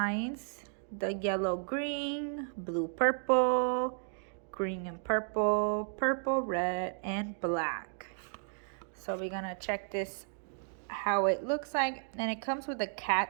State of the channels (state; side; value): silent; left; 55 dB below the other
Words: the yellow green, blue purple, green and purple, purple red, and black. So we're gonna check this, how it looks like. And it comes with a